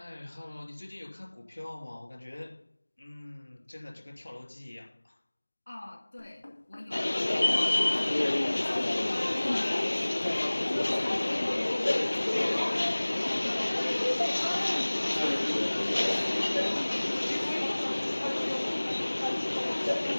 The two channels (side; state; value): both; inverted; correlation -1.00